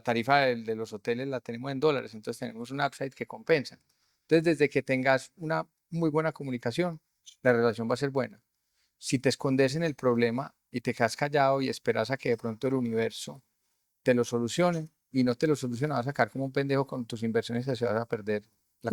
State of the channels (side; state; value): both; identical; correlation 1.00